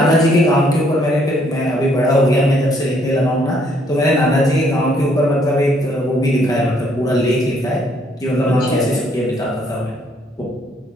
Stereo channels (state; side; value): normal; both; correlation 0.67